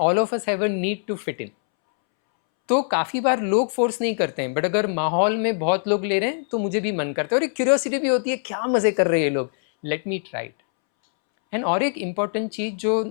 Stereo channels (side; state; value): right; silent; 64 dB below the other